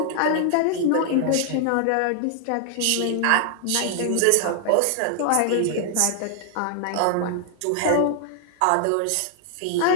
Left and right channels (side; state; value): both; different; correlation 0.00